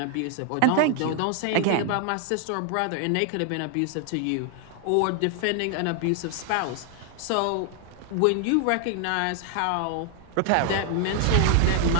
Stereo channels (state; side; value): different; both; correlation 0.00